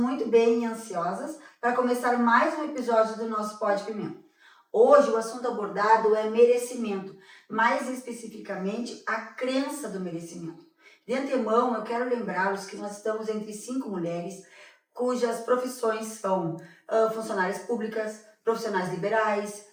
bem e ansiosas para começar mais um episódio do nosso Pó de Pimenta. Hoje o assunto abordado é merecimento, mais especificamente a crença do merecimento. De antemão, eu quero lembrá-los que nós estamos entre 5 mulheres cujas profissões são funcionárias públicas, profissionais liberais,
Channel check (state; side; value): identical; both; correlation 1.00